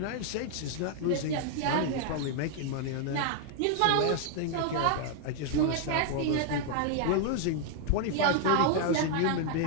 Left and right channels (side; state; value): both; different; correlation 0.00